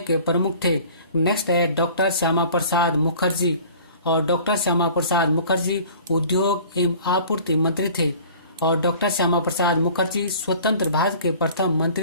प्रमुख थे। नेक्स्ट है डॉक्टर श्यामा प्रसाद मुखर्जी, और डॉक्टर श्यामा प्रसाद मुखर्जी उद्योग एवं आपूर्ति मंत्री थे, और डॉक्टर श्यामा प्रसाद मुखर्जी स्वतंत्र भारत के प्रथम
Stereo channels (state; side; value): inverted; both; correlation -0.47